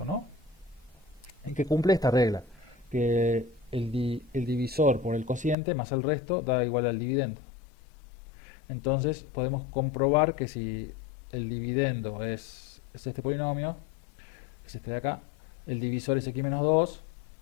¿no? Y que cumple esta regla, que el divisor por el cociente más el resto da igual al dividendo. Entonces podemos comprobar que si el dividendo es este polinomio, es este de acá, el divisor es x menos 2,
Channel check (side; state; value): right; drops out; at 5.6 s